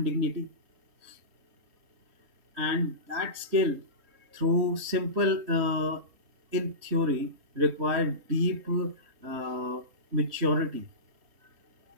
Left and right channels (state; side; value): late; left; 3.2 ms